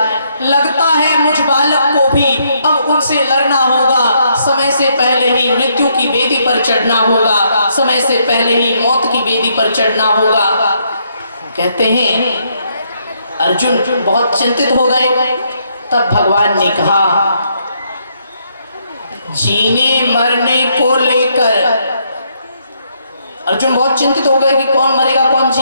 लगता है मुझ बालक को भी अब उनसे लड़ना होगा। समय से पहले ही मृत्यु की बेदी पर चढ़ना होगा। समय से पहले ही मौत की बेदी पर चढ़ना होगा। कहते हैं अर्जुन बहुत चिंतित हो गए। तब भगवान ने कहा, जीने मरने को लेकर अर्जुन बहुत चिंतित हो गए कि कौन मरेगा कौन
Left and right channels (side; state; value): both; inverted; correlation -0.73